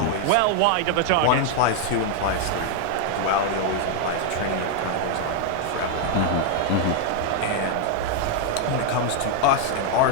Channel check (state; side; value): different; both; correlation 0.00